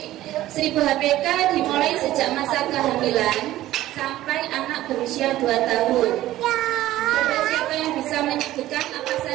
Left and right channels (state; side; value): quieter; left; 14.9 dB